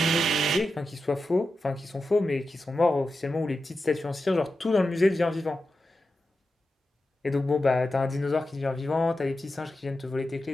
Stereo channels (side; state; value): both; normal; correlation 0.91